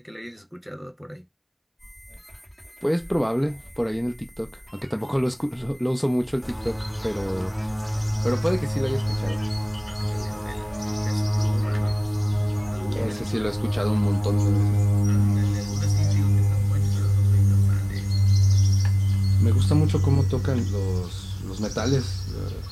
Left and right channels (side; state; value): both; identical; correlation 1.00